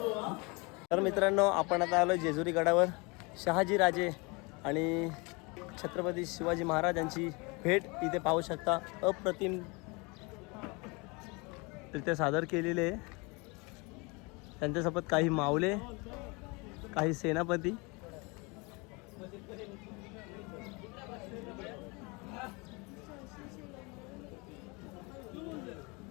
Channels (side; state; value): right; quieter; 28.1 dB